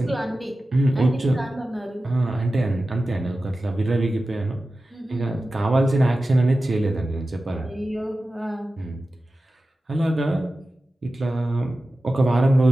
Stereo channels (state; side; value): normal; both; correlation 0.94